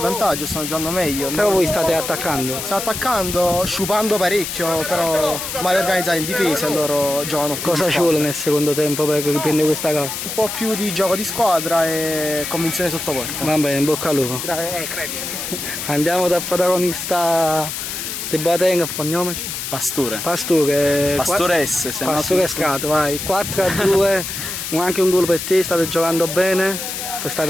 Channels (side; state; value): left; noise; hiss, 5 dB below the sound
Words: stanno giocando meglio. Però voi state attaccando. Stiamo attaccando, sciupando parecchio, però male organizzati in difesa e loro giocano più. Cosa ci vuole nel secondo tempo per riprendere questa gara? Un po' più di gioco di squadra e convinzione sotto porta. Va bene, in bocca al lupo. Andiamo dal protagonista di Boateng, cognome? Pastore. Pastore S. Pastore Strato, vai. 4-2, anche un gol per te, state giocando bene.